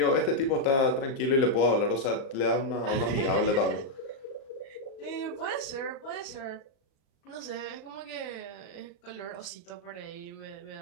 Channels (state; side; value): late; right; 37 ms